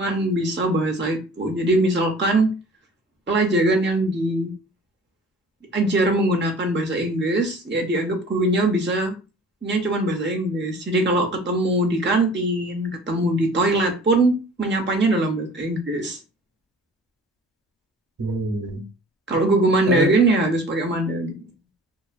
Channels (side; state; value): both; normal; correlation 0.46